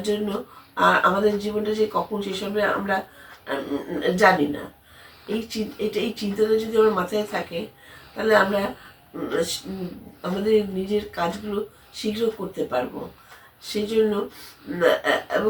জন্য আমাদের জীবনটা যে কখন শেষ হবে আমরা জানি না। এই চিন্তাটা যদি আমার মাথায় থাকে, তাহলে আমরা আমাদের নিজের কাজগুলো শীঘ্র করতে পারবো। সেই জন্য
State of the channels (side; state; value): both; identical; correlation 1.00